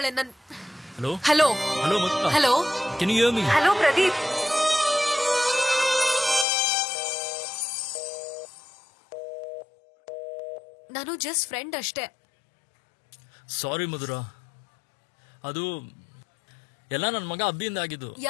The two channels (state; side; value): drops out; right; at 6.5 s